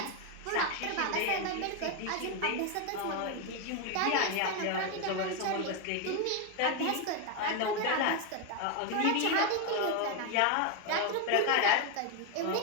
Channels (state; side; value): different; both; correlation 0.01